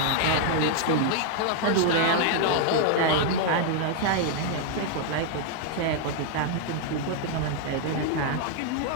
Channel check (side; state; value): both; different; correlation 0.00